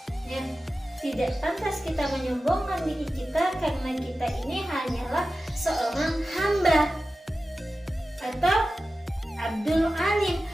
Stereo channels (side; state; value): both; normal; correlation 0.94